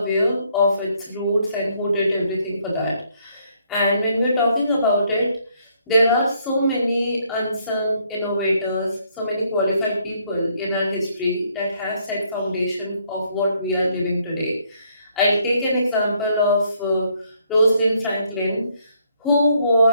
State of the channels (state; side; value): inverted; both; correlation -0.69